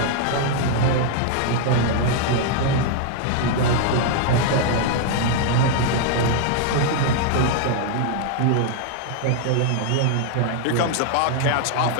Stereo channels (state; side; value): different; both; correlation 0.00